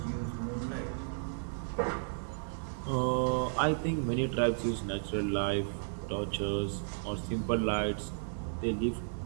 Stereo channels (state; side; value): silent; left; digital silence